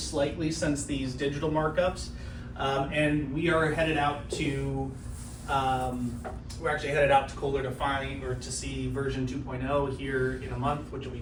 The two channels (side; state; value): both; identical; correlation 1.00